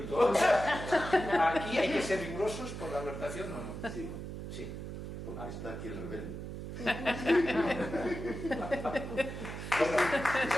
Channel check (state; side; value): noise; right; hum, 8 dB below the sound